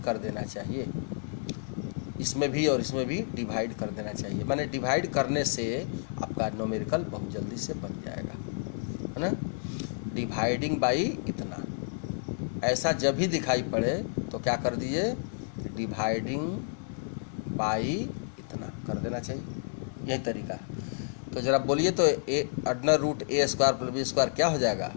कर देना चाहिए। इसमें भी और इसमें भी डिवाइड कर देना चाहिए, माने डिवाइड करने से आपका न्यूमेरिकल बहुत जल्दी से बन जाएगा, है ना। डिवाइडिंग बाई इतना, ऐसा जब भी दिखाई पड़े तो क्या कर दीजिए, डिवाइडिंग बाई इतना कर देना चाहिए, यही तरीका है। तो जरा बोलिए तो under root a square plus b square क्या हो जाएगा,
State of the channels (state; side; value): silent; right; 58 dB below the other